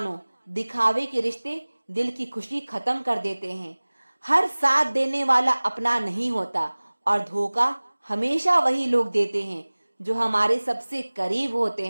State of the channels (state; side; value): inverted; both; correlation -1.00